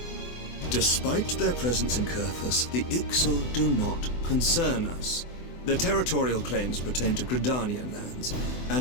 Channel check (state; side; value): late; right; 24 ms